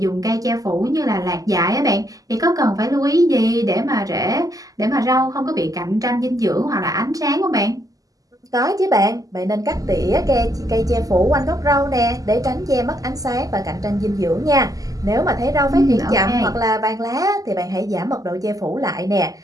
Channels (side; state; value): left; late; 0.17 ms